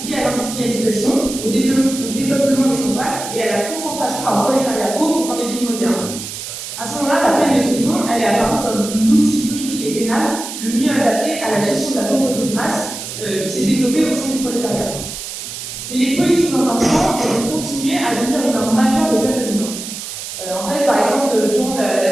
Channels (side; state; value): right; noise; hiss, 8 dB below the sound